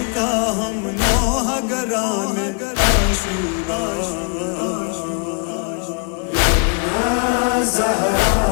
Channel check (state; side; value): quieter; right; 36.7 dB